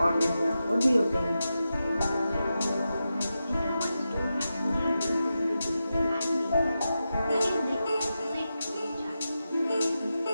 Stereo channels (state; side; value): inverted; both; correlation -0.90